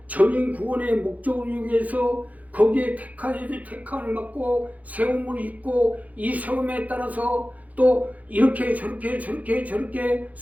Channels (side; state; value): left; late; 0.076 ms